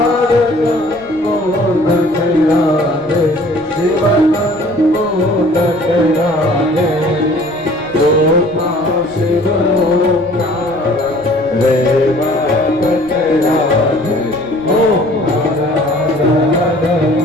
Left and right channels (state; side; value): noise; right; rumble, 22 dB below the sound